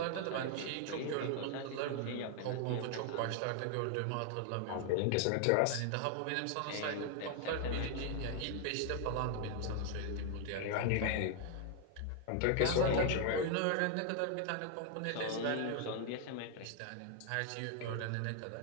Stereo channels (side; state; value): both; different; correlation 0.00